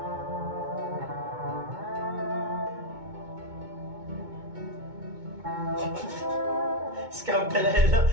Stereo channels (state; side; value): late; left; 2.2 ms